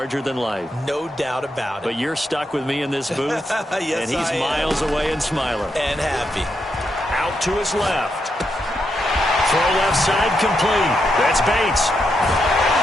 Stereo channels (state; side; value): normal; both; correlation 0.82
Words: than life. No doubt about it. But you're stuck with me in this booth, yes, and he's miles away and smiling. And happy. Out to his left. Throw left side complete. That's Bates.